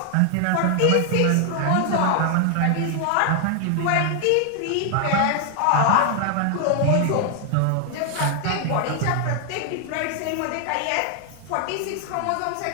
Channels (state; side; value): different; both; correlation 0.00